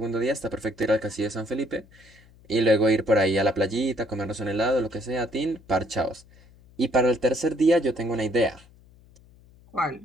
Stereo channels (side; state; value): left; noise; hum, 26 dB below the sound